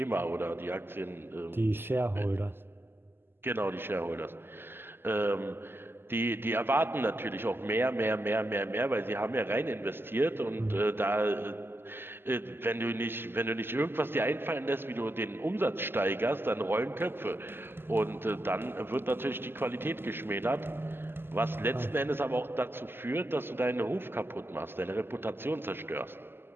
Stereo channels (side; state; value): left; late; 0.11 ms